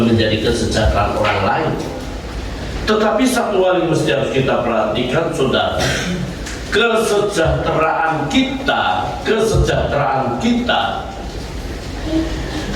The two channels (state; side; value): identical; both; correlation 1.00